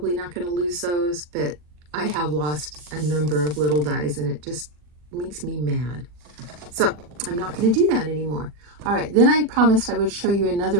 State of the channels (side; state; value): left; late; 40 ms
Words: not going to lose those, but I have lost a number of little dies, and it just makes me mad. So I'm not going to do that anymore. All right, then I promised I would show you